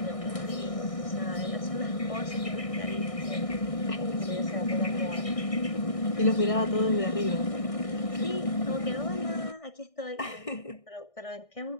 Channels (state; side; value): late; right; 1.6 ms